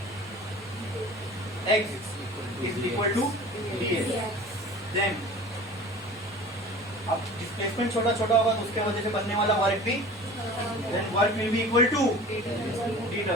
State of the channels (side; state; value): both; normal; correlation 0.41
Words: x is equal to ds, then अब डिस्प्लेसमेंट छोटा छोटा होगा तो उसके वजह से बनने वाला वर्क भी, then work will be equal to dw.